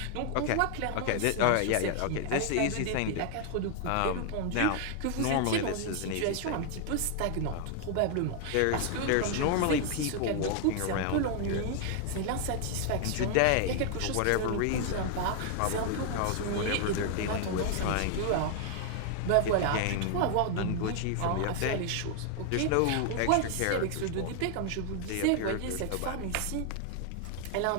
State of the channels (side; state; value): both; different; correlation 0.00